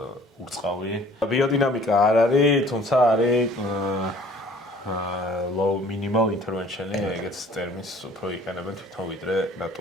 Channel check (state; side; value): normal; both; correlation 0.53